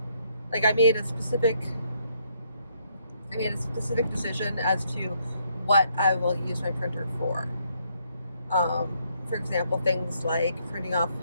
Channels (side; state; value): both; inverted; correlation -0.72